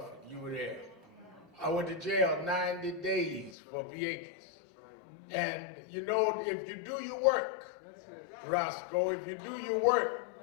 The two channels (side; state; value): right; drops out; at 3.6 s